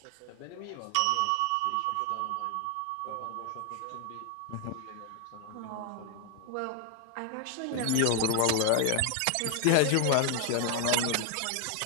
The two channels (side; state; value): both; different; correlation 0.00